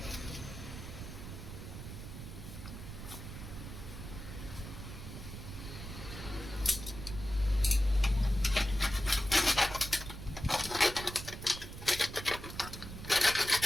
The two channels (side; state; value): right; noise; rumble, 10 dB below the sound